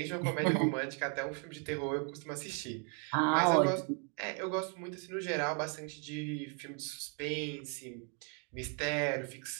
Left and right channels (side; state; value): left; quieter; 39.6 dB